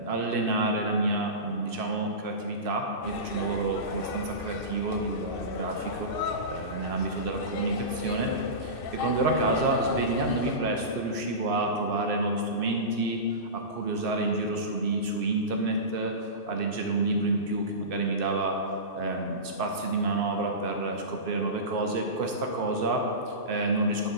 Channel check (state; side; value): late; right; 2.6 ms